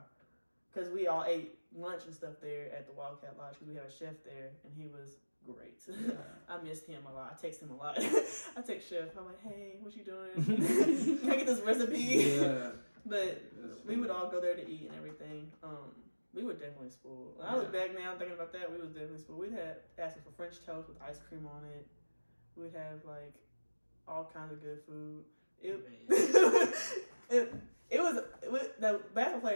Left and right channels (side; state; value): both; inverted; correlation -1.00